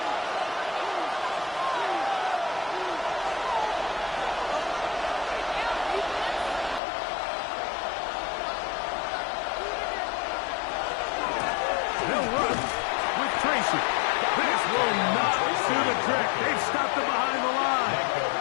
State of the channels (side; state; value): right; drops out; at 6.8 s